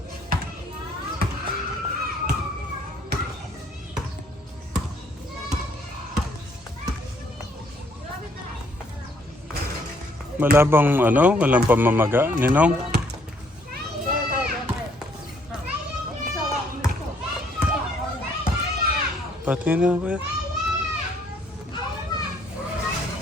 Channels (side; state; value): both; normal; correlation 0.66